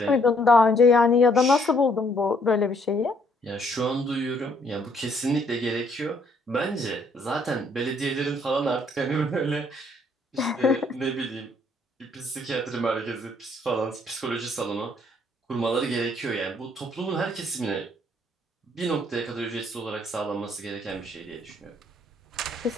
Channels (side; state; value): both; normal; correlation 0.66